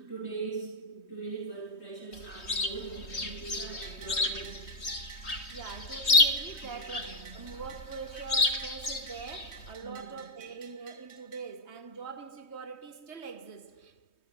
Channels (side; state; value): right; late; 3.2 ms